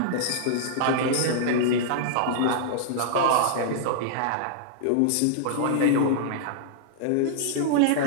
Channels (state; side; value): different; both; correlation -0.01